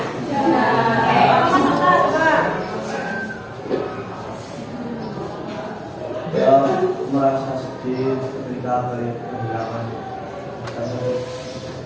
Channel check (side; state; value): both; identical; correlation 1.00